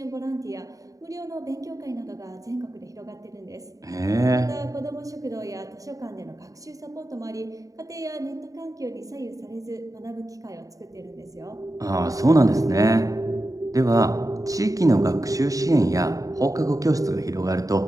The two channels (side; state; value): left; late; 0.16 ms